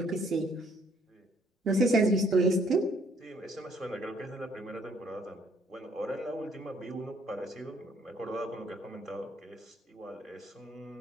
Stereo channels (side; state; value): both; normal; correlation 0.64